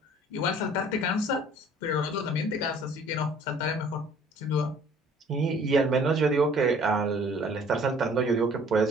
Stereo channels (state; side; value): normal; both; correlation 0.54